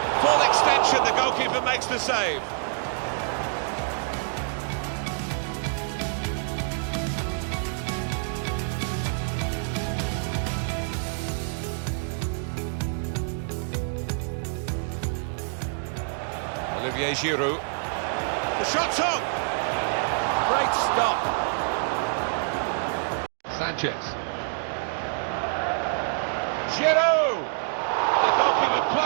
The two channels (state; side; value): silent; left; digital silence